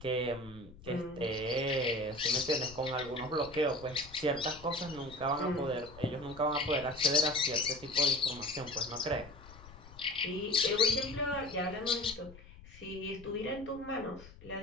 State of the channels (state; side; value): noise; left; rumble, 19 dB below the sound